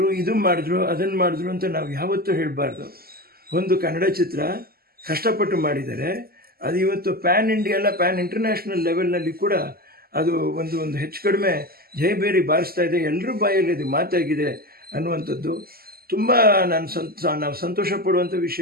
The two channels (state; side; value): late; left; 0.44 ms